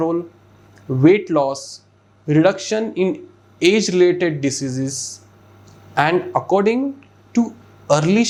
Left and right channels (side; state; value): both; identical; correlation 1.00